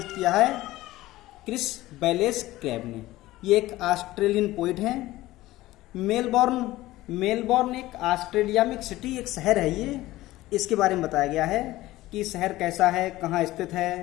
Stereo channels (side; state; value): right; quieter; 17.0 dB